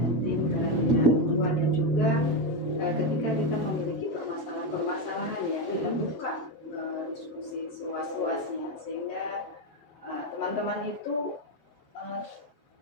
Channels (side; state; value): right; late; 7.4 ms